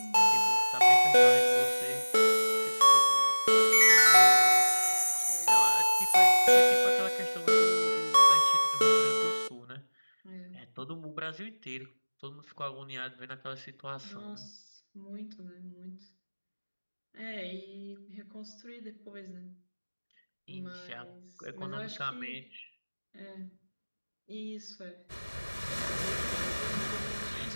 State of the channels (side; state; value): both; inverted; correlation -1.00